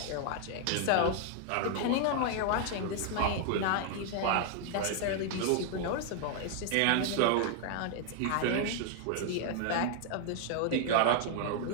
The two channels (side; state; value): both; different; correlation 0.00